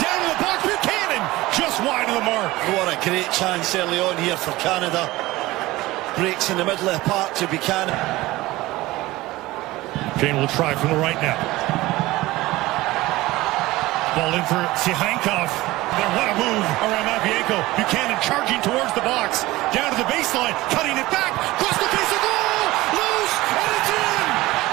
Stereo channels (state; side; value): quieter; left; 18.7 dB